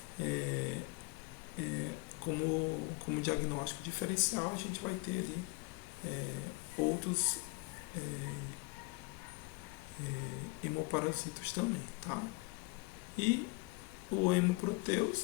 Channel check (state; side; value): quieter; right; 26.2 dB